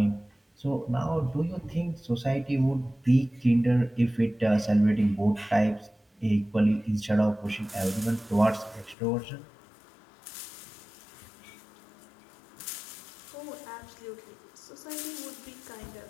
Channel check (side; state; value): right; drops out; at 9.0 s